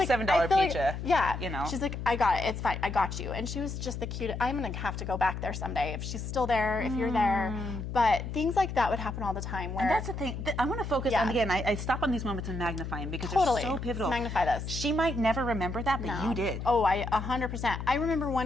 a $7 I feel like- pizza. yeah. You know. She's like, I got it. It's fine. I got you. And she was just the cutest. I'm going to have to go back there someday if she's still there, if you're there. But things like that would happen all the time. Where, And that's the thing. I want to focus on, again, I stop on these moments and magnify them because Totally. they're so pivotal. Let's magnify this. She might never remember that, but you did. Oh, 100%. I remember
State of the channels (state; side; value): noise; left; hum, 6 dB below the sound